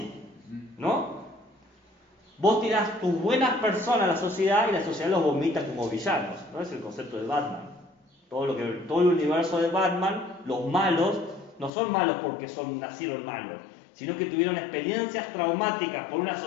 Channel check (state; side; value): drops out; right; at 11.7 s